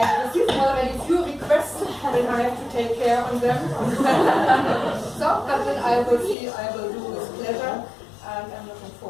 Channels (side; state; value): right; drops out; at 6.4 s